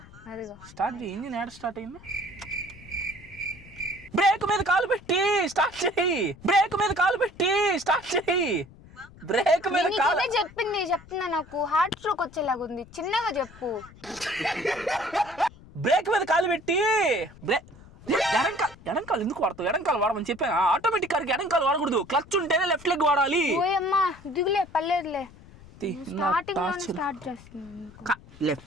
చేయి. ఇంజిన్ యాడ్ స్టార్ట్ అయింది. బ్రేక్ మీద కాలు పెట్టి స్టార్ట్ చేయి. బ్రేక్ మీద కాలు చెప్తున్నా, నాకు హార్ట్ స్ట్రోక్ వచ్చేలాగా ఉంది. చిన్నగా చెప్పు. బ్రేక్ మీద కాలు పెట్టి ఎడంకాలు ఎందుకు వాడతావు? ఎడంకాలు వాడమని చెప్పాను. ఆటోమేటిక్ కార్కి ఎడంకాలు వాడకూడదు, క్లచ్ ఉంటేనే లెఫ్ట్ లెగ్ వాడాలి. ఓయమ్మా దిగులే, పర్లేదులే.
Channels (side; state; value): left; noise; rumble, 21 dB below the sound